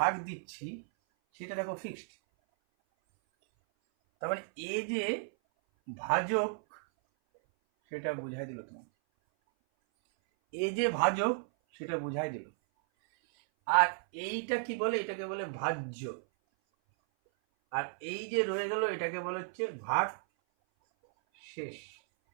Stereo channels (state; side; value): silent; left; 55 dB below the other